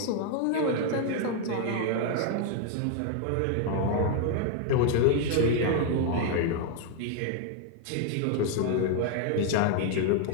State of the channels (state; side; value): different; both; correlation 0.00